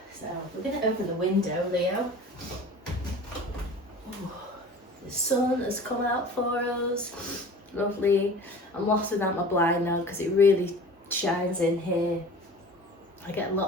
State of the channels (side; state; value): both; normal; correlation 0.41